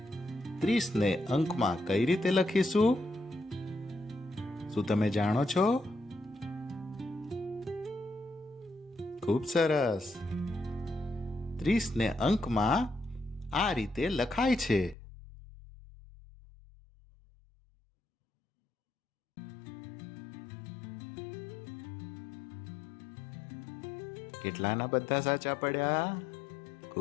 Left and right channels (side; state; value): right; drops out; at 15.0 s